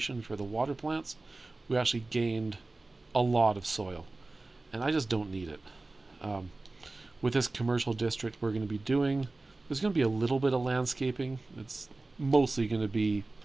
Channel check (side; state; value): left; quieter; 3.2 dB